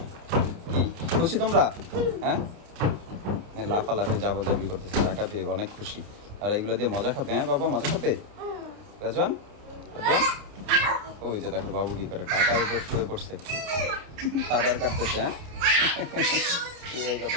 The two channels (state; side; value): late; left; 29 ms